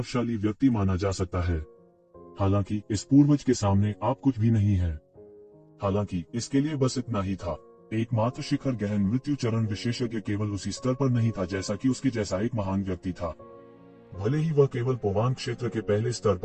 व्यक्ति माना जा सकता है, हालांकि इस पूर्वज के सामने आप कुछ भी नहीं है। हालांकि इसके लिए बस इतना ही था। एकमात्र शिखर गहन मृत्यु चरण विशेषज्ञ केवल उसी स्तर पर नहीं था जैसा कि उसके जैसा एक महान व्यक्ति था। भले ही वह केवल पोवान क्षेत्र के पहले स्तर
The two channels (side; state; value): both; identical; correlation 1.00